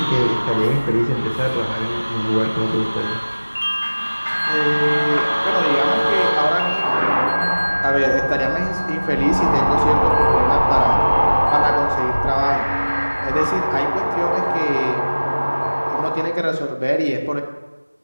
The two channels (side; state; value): both; inverted; correlation -1.00